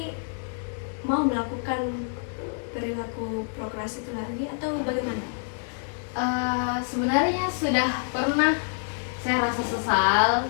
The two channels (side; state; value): right; silent; 60 dB below the other